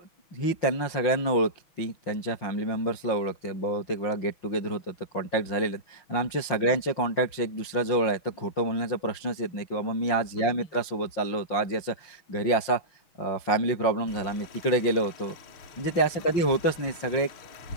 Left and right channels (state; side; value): late; right; 6.1 ms